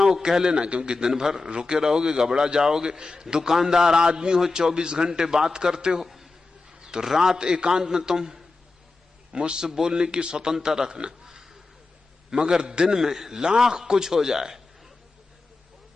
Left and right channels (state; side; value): quieter; right; 3.7 dB